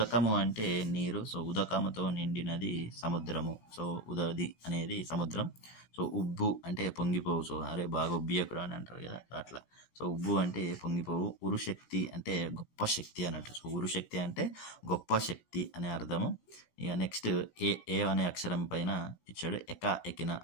అంటే నీరు. సో ఉదకముతో నిండినది సముద్రము. సో ఉదది అనేది సముద్రం. సో ఉబ్బు అంటే పొంగిపోవు. సో అరే బాగా ఉబ్బియకురా అని అంటారు కదా, అట్లా. సో ఉబ్బు అంటే పొంగిపోవు. ఉరుశక్తి అంటే గొప్ప శక్తి అన్నట్టు. సో ఉరుశక్తి అంటే గొప్ప శక్తి అనే అర్థము. ఇక నెక్స్ట్ ఏ అనే అక్షరం పైన ఇచ్చాడు. ఎక్కిన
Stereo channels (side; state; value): right; late; 16 ms